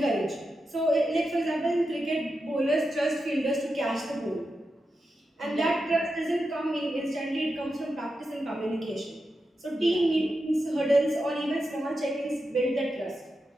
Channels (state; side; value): normal; both; correlation 0.89